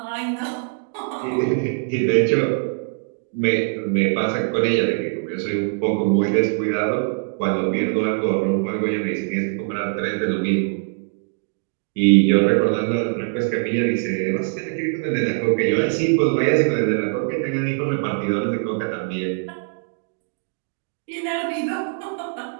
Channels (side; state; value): left; silent; 59 dB below the other